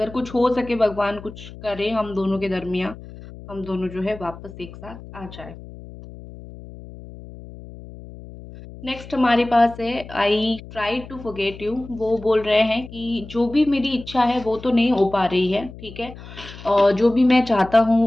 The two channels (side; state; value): left; noise; hum, 16 dB below the sound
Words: कुछ हो सके, भगवान कुछ करे हम दोनों के दरमियाँ, हम दोनों जो है वापस एक साथ आ जाएँ। नेक्स्ट हमारे पास है, I try to forget you. वो बोल रहे हैं कि जो भी मेरी इच्छा है वो तो नहीं हो पा रही है। ठीक है, और जो भी मैं चाहता